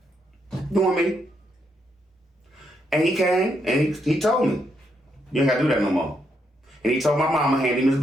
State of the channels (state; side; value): normal; both; correlation 0.78